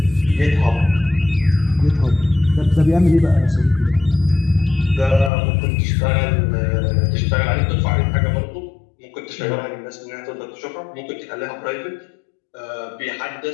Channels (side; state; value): right; drops out; at 5.3 s